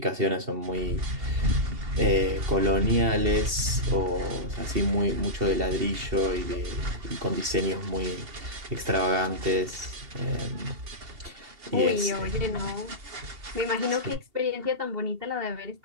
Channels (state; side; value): late; left; 2.7 ms